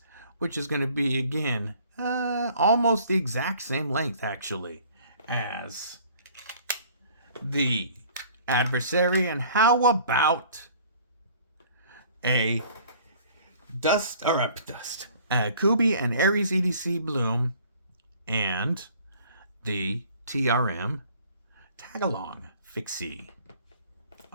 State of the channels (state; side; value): inverted; both; correlation -0.53